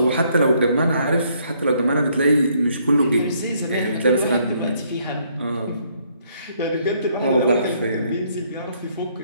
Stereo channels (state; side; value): inverted; both; correlation -0.68